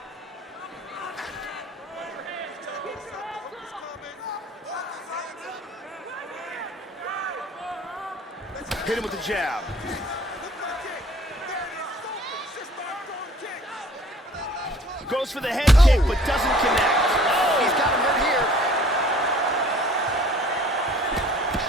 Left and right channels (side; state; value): both; normal; correlation 0.53